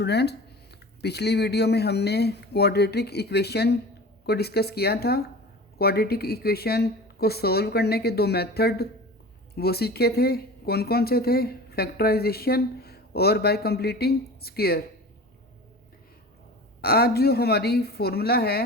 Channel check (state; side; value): normal; both; correlation 0.36